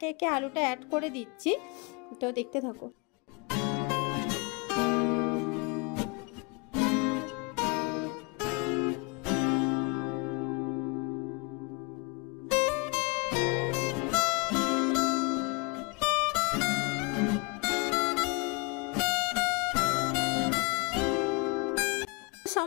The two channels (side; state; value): right; quieter; 30.1 dB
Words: একে আলুটা অ্যাড করে দিচ্ছি। তো দেখতে থাকো।